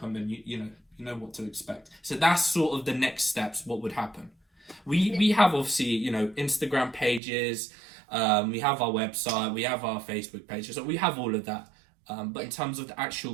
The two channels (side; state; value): left; drops out; at 7.2 s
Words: and you know what to expect. So that's sort of the next steps. What would happen? We have obviously Instagram pages, we have our website, we have our Facebook pages, so we have all of that. But in terms of the actual